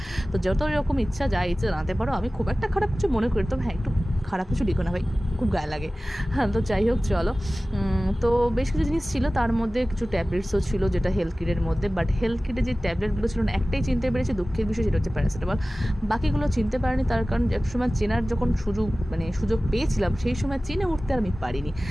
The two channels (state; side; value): normal; both; correlation 0.97